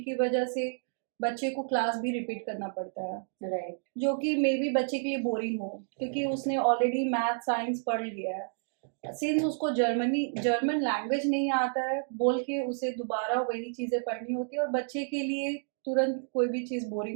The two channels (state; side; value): silent; left; digital silence